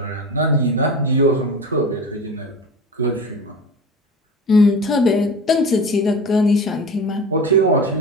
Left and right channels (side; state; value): both; normal; correlation 0.32